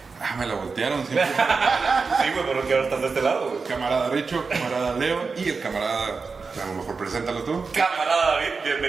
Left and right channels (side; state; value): left; quieter; 4.7 dB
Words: Me la voltearon siempre. Sí, güey, pero que ahora estás de este lado, güey. Camarada Richo, camarada Leo y el camarada, a lo mejor preséntalo tú. Camarada David,